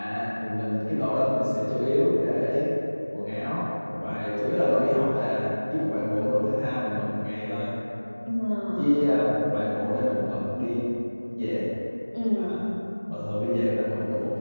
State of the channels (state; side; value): inverted; both; correlation -1.00